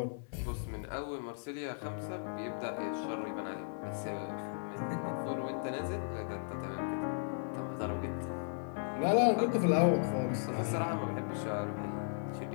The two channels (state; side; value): silent; right; digital silence